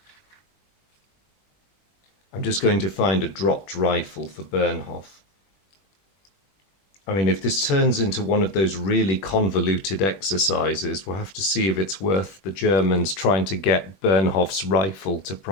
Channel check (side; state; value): right; late; 21 ms